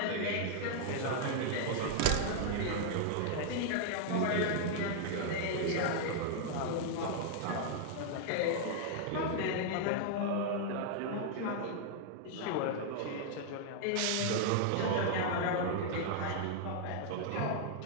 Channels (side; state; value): both; different; correlation -0.01